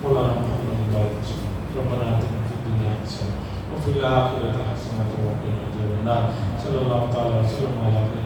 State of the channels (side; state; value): both; identical; correlation 1.00